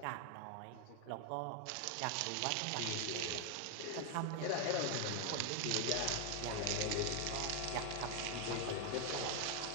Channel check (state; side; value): different; both; correlation 0.01